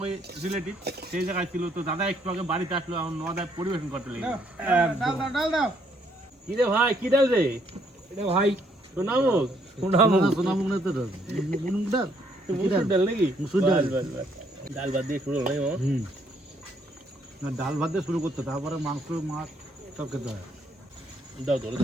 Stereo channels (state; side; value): normal; both; correlation 0.69